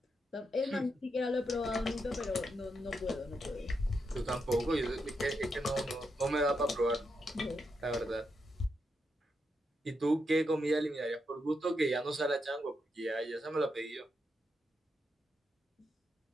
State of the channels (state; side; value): normal; both; correlation 0.83